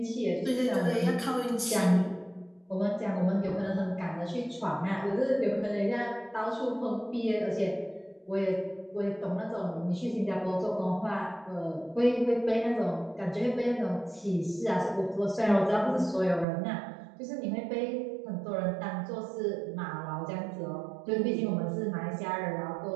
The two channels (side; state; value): left; drops out; at 16.4 s